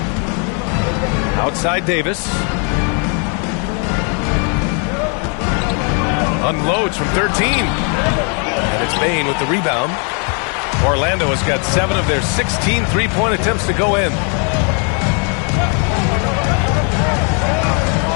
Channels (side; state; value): right; quieter; 38.7 dB